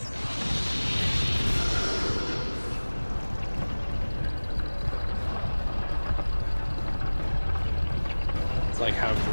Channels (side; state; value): both; inverted; correlation -1.00